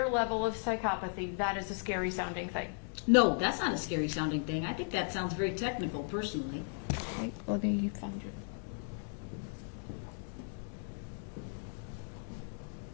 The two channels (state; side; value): silent; right; 54 dB below the other